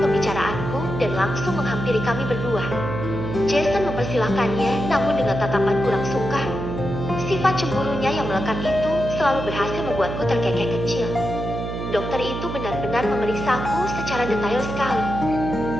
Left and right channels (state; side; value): noise; right; hum, 5 dB below the sound